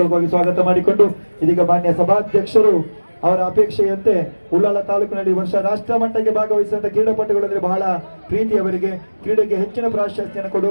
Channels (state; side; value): inverted; both; correlation -1.00